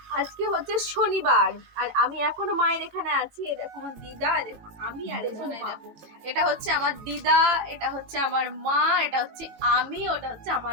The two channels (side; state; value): left; late; 18 ms